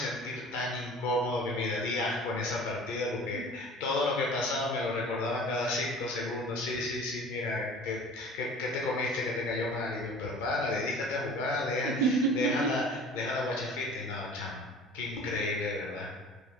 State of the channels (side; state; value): both; normal; correlation 0.44